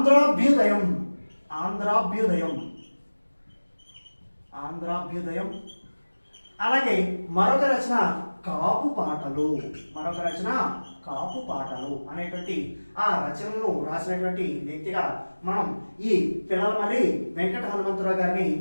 అలాగే మరొక రచన కాపు పాటలు అనేటువంటి ఆ రచనలను రాసినటువంటి వ్యక్తిగా మనం ఈ పిల్లలమర్రి వెంకట హనుమంతరావు గారిని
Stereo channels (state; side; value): inverted; both; correlation -1.00